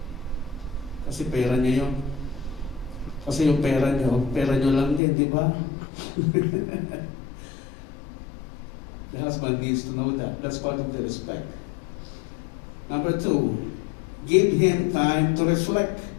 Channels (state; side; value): drops out; right; at 5.0 s